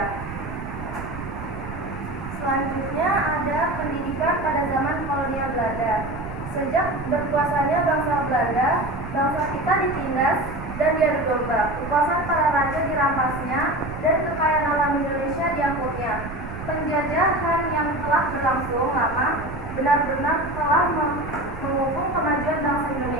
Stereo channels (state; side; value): noise; right; rumble, 11 dB below the sound